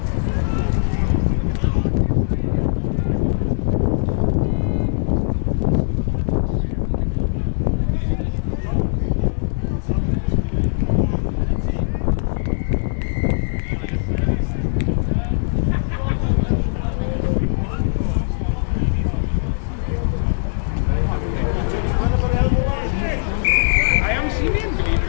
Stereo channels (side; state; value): right; silent; digital silence